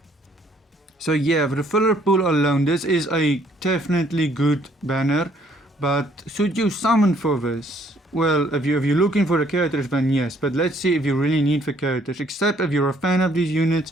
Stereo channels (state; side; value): normal; both; correlation 0.64